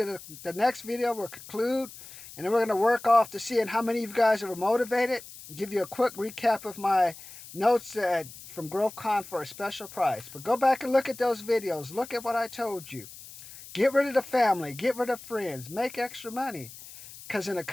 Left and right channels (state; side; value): noise; left; hiss, 16 dB below the sound